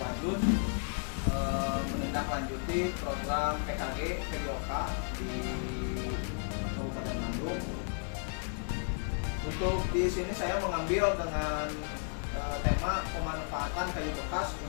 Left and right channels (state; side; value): silent; right; 56 dB below the other